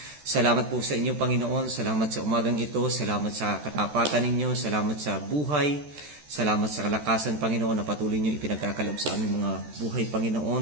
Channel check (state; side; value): late; left; 14 ms